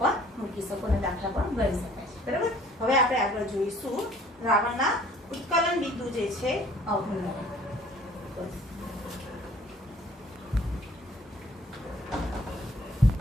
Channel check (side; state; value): both; normal; correlation 0.55